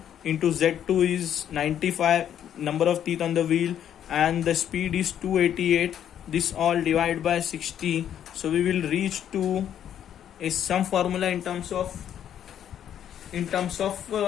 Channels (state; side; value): quieter; right; 9.9 dB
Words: into z2 is 95 number of teeth on the wheel, and the speed is 288. This all divided by 60, so we will reach to a some formula in terms of